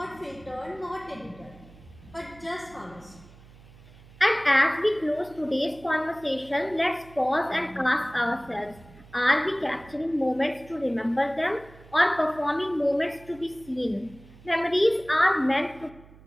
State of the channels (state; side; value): noise; right; hum, 22 dB below the sound